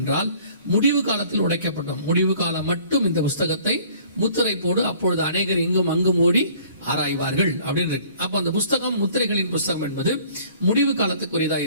என்றால், முடிவு காலத்தில் உடைக்கப்படும். முடிவு காலம் மட்டும் இந்த புஸ்தகத்தை முத்திரை போடு, அப்பொழுது அநேகர் இங்கும் அங்கும் ஓடி ஆராய்வார்கள் அப்படின்னு இருக்கு. அப்ப அந்த புஸ்தகம் முத்திரைகளின் புஸ்தகம் என்பது முடிவு காலத்துக்குரியதா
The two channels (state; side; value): inverted; both; correlation -0.54